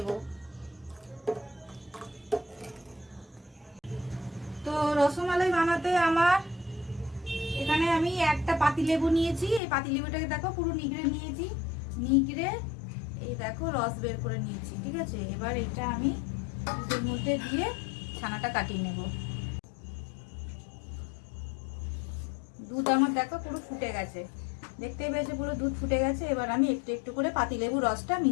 তো রসমালাই বানাতে আমার এখানে আমি একটা পাতিলেবু নিয়েছি। এই পাতিলেবুটাকে দেখো পুরো নিগড়ে নিয়েছি, নিগড়ে এই দেখো রস বের করে নিয়েছি। ঠিক আছে, এবার এটা আমি দুধের মধ্যে দিয়ে ছানাটা কাটিয়ে নেব। দুধ আমার দেখো পুরো ফুটে গেছে, দেখতেই পেয়েছে পুরো দুধ ফুটে গেছে। এবার আমি একটু একটু করে পাতিলেবু রসটা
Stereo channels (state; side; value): drops out; right; at 9.6 s